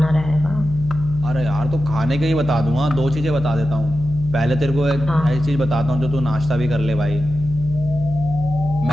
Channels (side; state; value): left; noise; hum, 10 dB below the sound